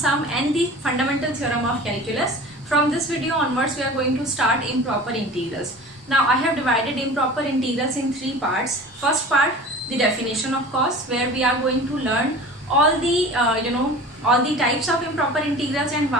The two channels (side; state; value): both; normal; correlation 0.39